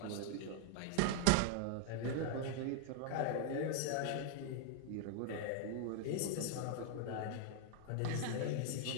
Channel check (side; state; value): both; different; correlation 0.00